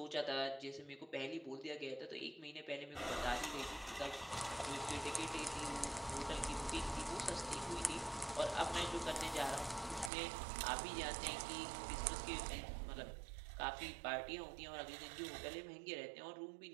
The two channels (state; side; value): drops out; left; at 10.1 s